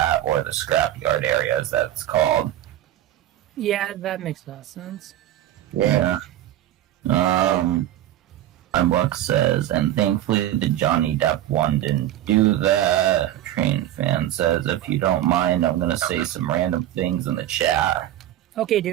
or the scrapyard area, as that's called. Yeah, that makes a lot of sense. Yeah. Mindblock says, and thankfully the Johnny Depp one didn't do that. Train Fan says, if you don't mind, I'm gonna say some random things in the chat. Okay,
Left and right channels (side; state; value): left; quieter; 12.9 dB